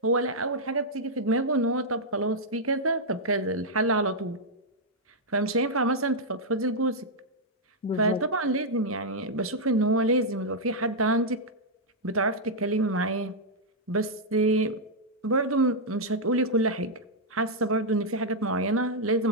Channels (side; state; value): both; normal; correlation -0.05